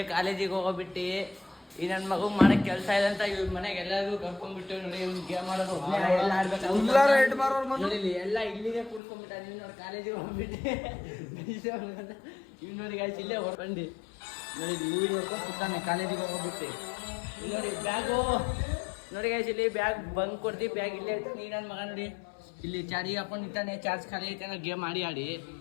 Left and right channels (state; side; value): drops out; right; at 9.0 s